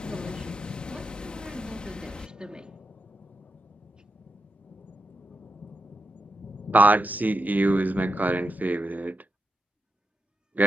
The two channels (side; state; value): both; normal; correlation 0.86